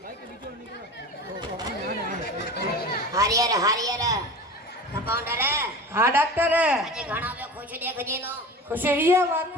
हरियर कंपाउंडर हाँ डॉक्टर अजे घणा बे खुश देख जेलो खुश ये बात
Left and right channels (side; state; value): both; normal; correlation 0.34